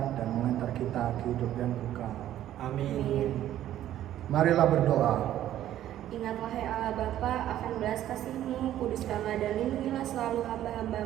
dan mengantar kita ke hidup yang kekal. Amin. Marilah berdoa. Ingat wahai Allah Bapa akan belas kasih-Mu, kuduskanlah dan lindungilah selalu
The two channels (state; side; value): quieter; left; 12.4 dB